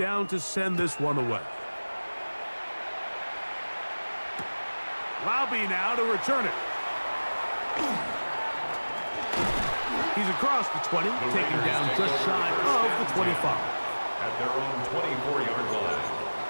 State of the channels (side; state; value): both; inverted; correlation -1.00